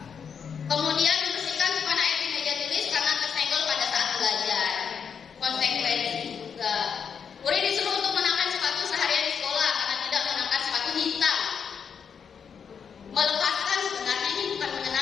Kemudian membersihkan tumpahan air di meja tulis karena tersenggol pada saat belajar. Konsekuensi juga. Murid disuruh untuk mengenakan sepatu seharian di sekolah karena tidak mengenakan sepatu hitam. Melepaskan, sebenarnya ini bukan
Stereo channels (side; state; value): right; quieter; 6.8 dB